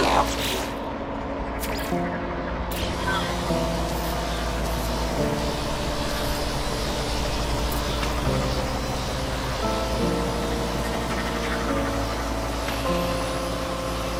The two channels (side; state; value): both; identical; correlation 1.00